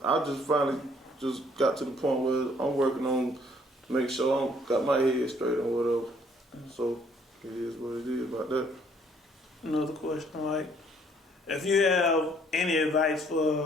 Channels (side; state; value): both; normal; correlation 0.63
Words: I just finally just got to the point where I'm working on to make sure I got my head straight or whatever. So it is what it is about that. Another question, like, if you have any advice